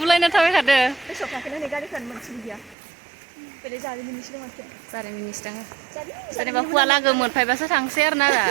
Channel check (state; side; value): drops out; left; at 2.8 s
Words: थाबायखादो जारिमिननिसो दङ जेनेबा हुवा लागो मोनफायबासो थांसै आरोना